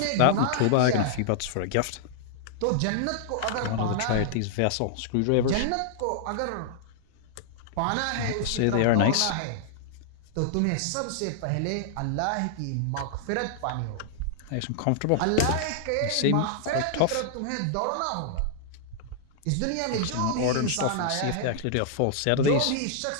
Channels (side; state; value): both; different; correlation -0.01